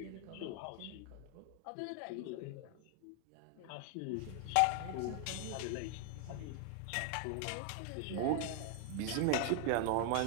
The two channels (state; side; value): different; both; correlation 0.00